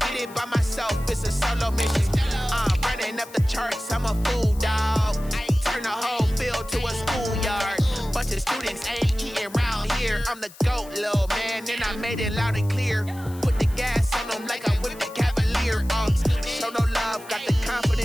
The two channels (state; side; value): noise; left; hiss, 20 dB below the sound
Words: did it by myself, it's a solo mission. Running up the charts, I'm a fool, dog. Turn the whole field to a schoolyard. Bunch of students ain't eating round here. I'm the GOAT, little man, and I made it loud and clear. Put the gas on them like I'm with the Cavalier. Show no love, got the